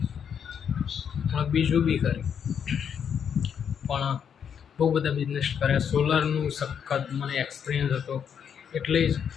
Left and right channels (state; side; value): quieter; right; 7.8 dB